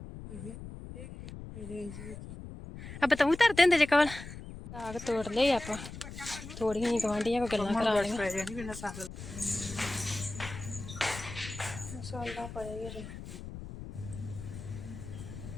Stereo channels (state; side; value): noise; left; rumble, 11 dB below the sound